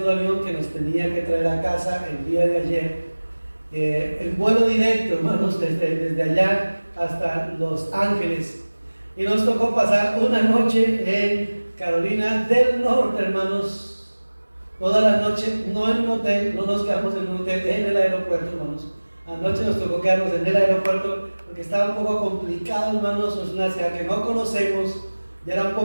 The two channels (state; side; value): inverted; both; correlation -1.00